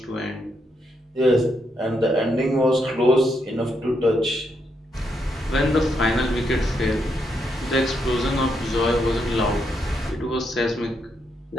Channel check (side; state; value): both; normal; correlation 0.79